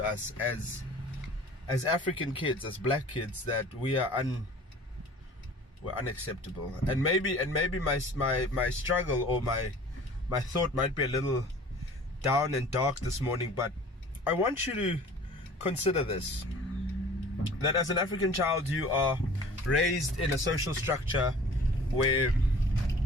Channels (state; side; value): normal; both; correlation 0.46